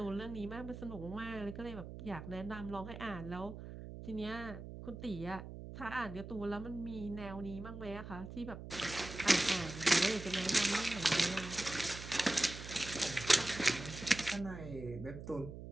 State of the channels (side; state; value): right; noise; hum, 10 dB below the sound